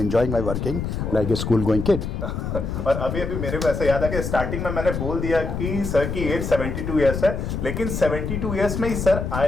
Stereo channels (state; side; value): noise; left; rumble, 3 dB below the sound